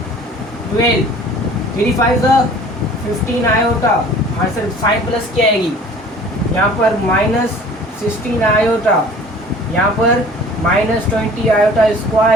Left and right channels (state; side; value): normal; both; correlation 0.48